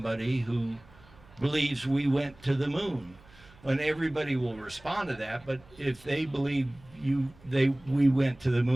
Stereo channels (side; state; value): right; noise; hum, 25 dB below the sound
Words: who believes we went to the moon? And everybody will respond to that, but if they believe we went to the